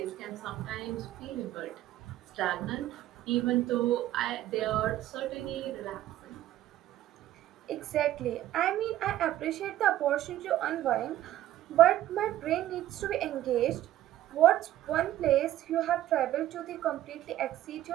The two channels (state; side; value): quieter; left; 13.5 dB